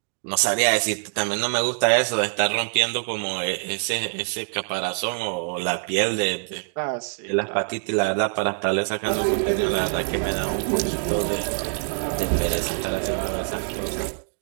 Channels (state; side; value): silent; left; 62 dB below the other